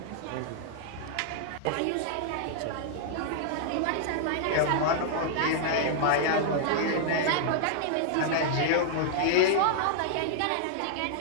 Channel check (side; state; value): both; different; correlation -0.01